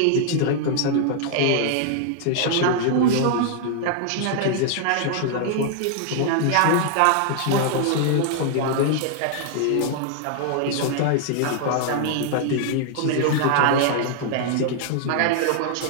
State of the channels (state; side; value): different; both; correlation -0.01